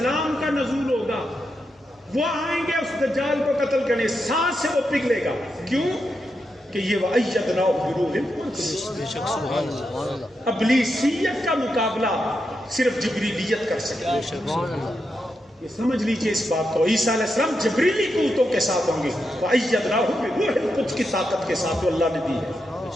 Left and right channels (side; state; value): both; normal; correlation 0.85